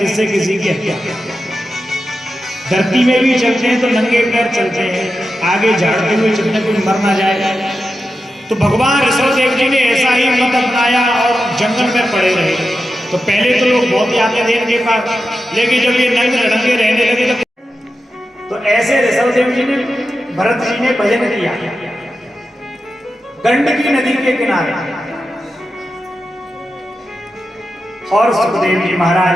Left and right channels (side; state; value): both; normal; correlation 0.90